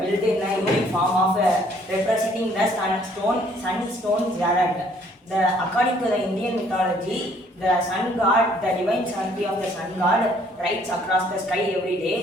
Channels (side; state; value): both; normal; correlation 0.62